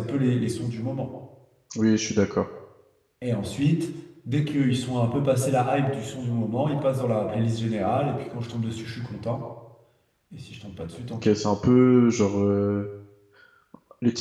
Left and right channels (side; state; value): both; identical; correlation 1.00